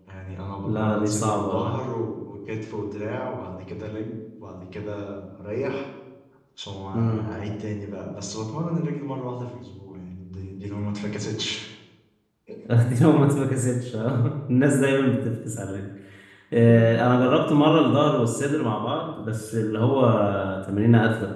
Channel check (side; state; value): both; identical; correlation 1.00